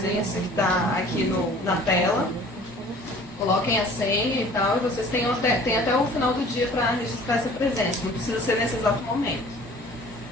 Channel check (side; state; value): both; normal; correlation 0.49